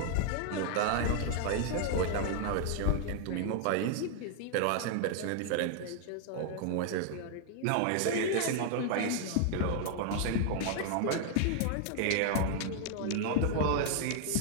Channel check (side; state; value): both; different; correlation 0.00